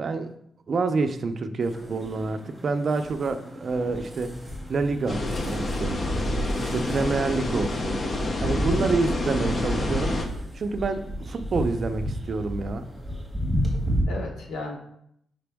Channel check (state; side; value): normal; both; correlation 0.84